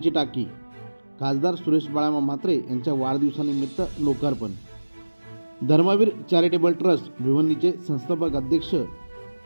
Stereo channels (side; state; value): both; inverted; correlation -1.00